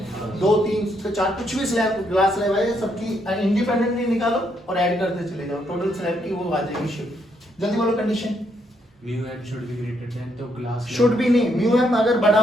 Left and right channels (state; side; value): normal; both; correlation 0.75